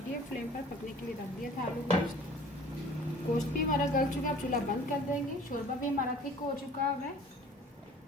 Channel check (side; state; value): both; normal; correlation 0.48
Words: फ्लेम पर पकने के लिए रख दिया था आलू गोश्त। गोश्त भी हमारा गल चुका है, अब चूल्हा बंद कर देंगे। शोरबा भी हमारा थिक हो चुका है।